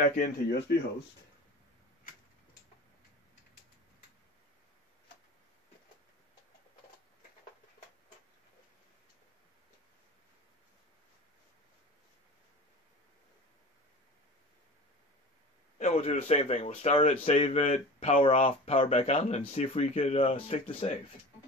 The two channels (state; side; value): normal; both; correlation 0.36